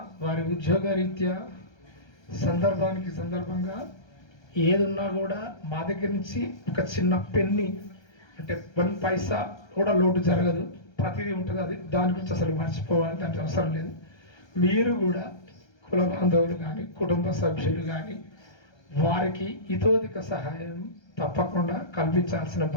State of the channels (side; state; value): right; late; 1.3 ms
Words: వారి ఉద్యోగ రీత్యా సందర్భంగా ఏదున్నా కూడా మా దగ్గర నుంచి ఒక చిన్న పెన్ని అంటే 1 పైసా కూడా లోటు జరగదు, ప్రతిదీ ఉంటుంది. అది దాని గురించి అసలు మర్చిపోవాలి, దానికి అవసరం లేదు. మీరు కూడా కుల బాంధవులు కానీ కుటుంబ సభ్యులు కానీ వారికి ఇతోధిక సహాయం తప్పకుండా కల్పించాల్సిన